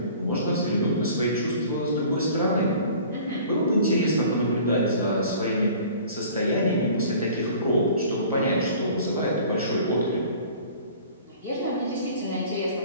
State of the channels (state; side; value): inverted; both; correlation -0.47